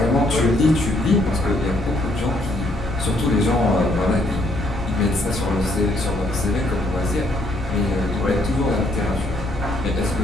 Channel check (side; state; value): left; noise; rumble, 9 dB below the sound